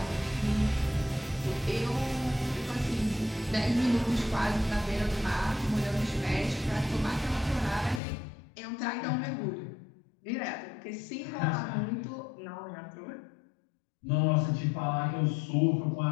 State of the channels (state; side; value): drops out; right; at 8.0 s